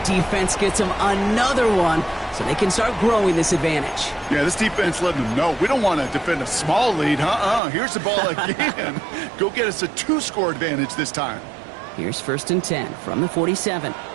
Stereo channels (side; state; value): left; drops out; at 7.6 s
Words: defense gets him another one, so they can start growing this advantage. Yeah, this defense letting them know we don't want to defend a small lead. Here's the ball again. Go get us a 2-score advantage this time. Here's 1st and 10 from the 47.